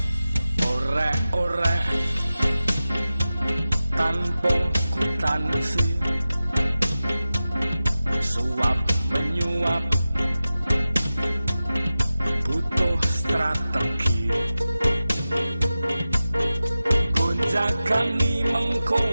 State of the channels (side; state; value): both; inverted; correlation -0.93